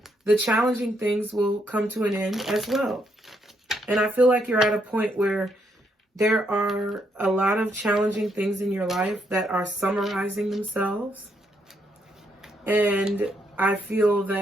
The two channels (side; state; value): both; normal; correlation 0.75